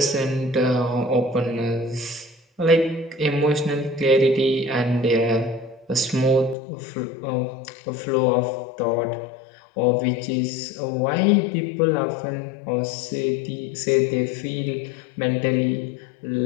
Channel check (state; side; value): drops out; right; at 6.6 s